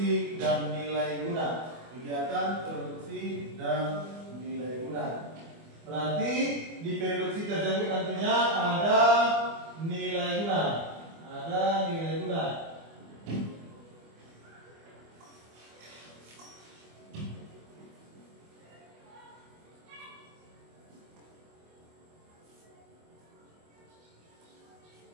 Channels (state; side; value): late; left; 24 ms